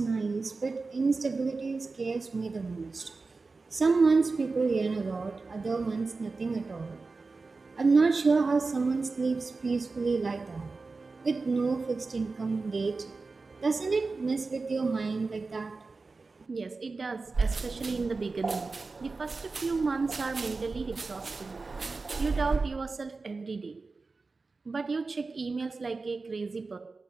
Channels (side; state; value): left; quieter; 3.9 dB